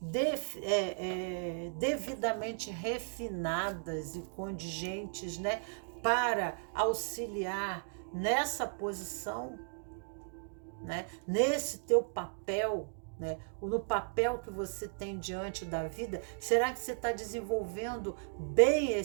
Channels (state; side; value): silent; left; digital silence